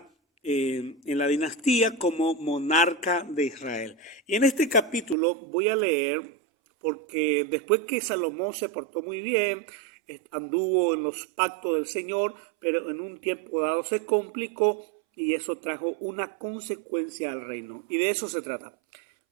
en la dinastía como monarca de Israel. Y en este capítulo voy a leer, porque después que Salomón se portó muy bien, anduvo en los pactos del Señor, pero en un tiempo dado se complicó y eso trajo una consecuencia al reino. Y de eso se trata.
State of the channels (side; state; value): left; drops out; at 5.2 s